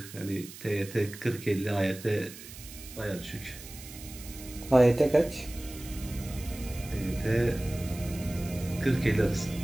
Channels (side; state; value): right; noise; hiss, 15 dB below the sound